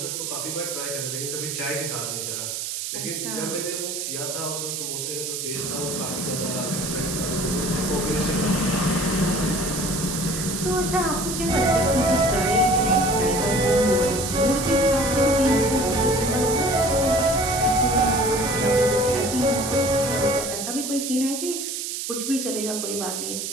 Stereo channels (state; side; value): noise; right; hiss, 4 dB below the sound